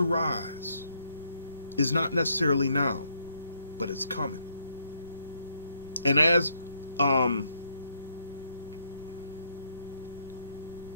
rise is not necessarily now, but it's coming. And as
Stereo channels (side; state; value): both; inverted; correlation -0.73